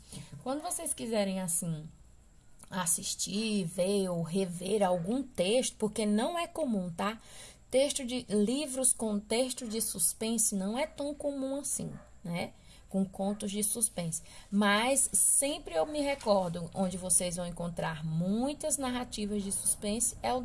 quando vocês quiserem, assim, assistir, ver ou rever algum texto, porque não é comum, tá? Texto de livros com texto de suspense não é tão comum assim, né? Com contos de suspense. Mas sempre eu me recordo, onde vocês vão encontrar muitas narrativas de suspense, é o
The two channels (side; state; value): both; identical; correlation 1.00